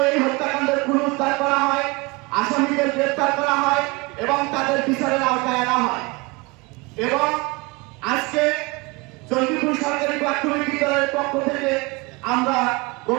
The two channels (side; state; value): left; quieter; 25.5 dB